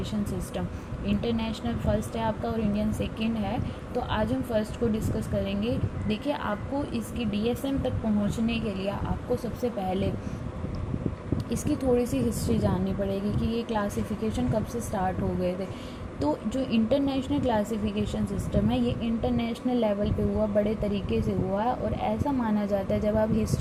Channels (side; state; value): both; identical; correlation 1.00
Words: system. International first है आपका और इंडियन सेकंड है। तो आज हम फर्स्ट को डिस्कस करेंगे। देखिए, आपको इसकी डीएसएम तक पहुंचने के लिए आपको सबसे पहले इसकी थोड़ी सी हिस्ट्री जाननी पड़ेगी कि ये क्लासिफिकेशन कब से स्टार्ट हो गए थे। तो जो इंटरनेशनल क्लासिफिकेशन सिस्टम है ये इंटरनेशनल लेवल पे हुआ, बड़े तरीके से हुआ है। और ऐसा माना जाता है, जब आप